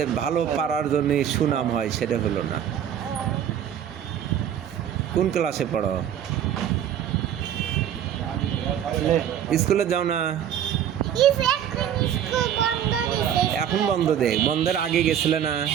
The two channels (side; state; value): left; quieter; 9.8 dB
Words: ভালো পারার জন্য সুনাম হয় সেটা হলো না কোন ক্লাসে পড়ো স্কুলে যাও না এখন বন্ধ দে বন্ধের আগে গেছিলে না